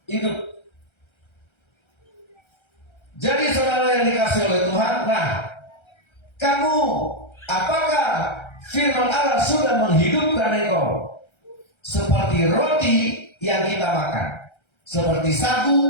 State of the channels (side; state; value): right; late; 1.3 ms